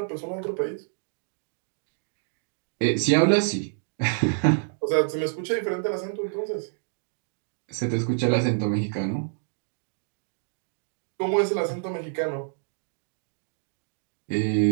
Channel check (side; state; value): left; silent; digital silence